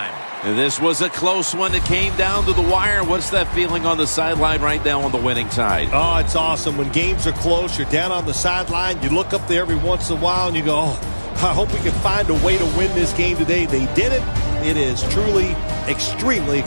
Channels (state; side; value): inverted; both; correlation -1.00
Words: This was a close one. It came down to the wire. What's that feeling on the sideline right now on the winning side? Oh, it's awesome. When games are close, you're down on the sideline. You look up there every once in a while and you go, oh, I hope we can find a way to win this game today. They did it. It is truly extremely